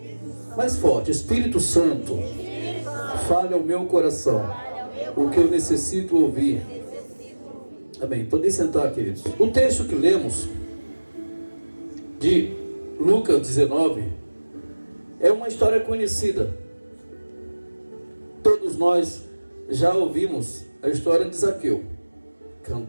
mais forte, Espírito Santo, fale ao meu coração o que eu necessito ouvir. Amém. Podem sentar, queridos. O texto que lemos de Lucas 19 é uma história conhecida. Todos nós já ouvimos a história de Zaqueu,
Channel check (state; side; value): inverted; both; correlation -1.00